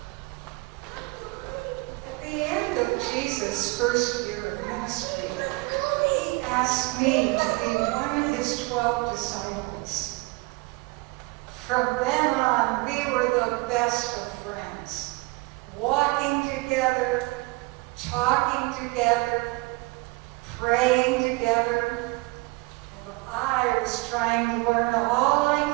At the end of Jesus' first year of ministry, he asked me to be one of his 12 disciples. From then on, we were the best of friends, walking together, talking together, praying together, and I was trying to learn all I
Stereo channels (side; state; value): left; quieter; 24.9 dB